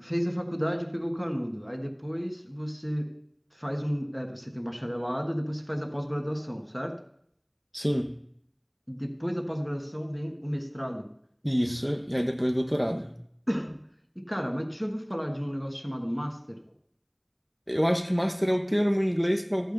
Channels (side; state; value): both; identical; correlation 1.00